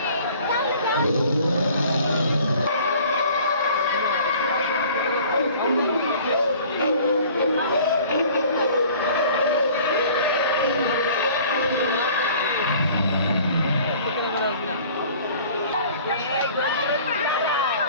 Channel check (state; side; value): inverted; both; correlation -0.50